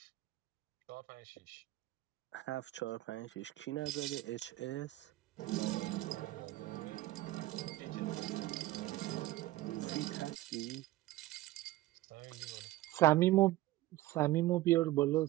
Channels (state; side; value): quieter; left; 16.8 dB